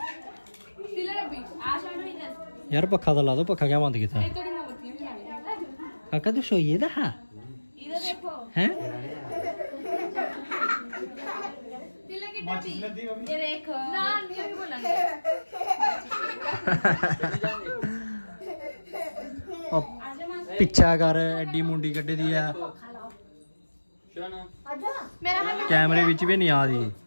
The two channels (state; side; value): inverted; both; correlation -1.00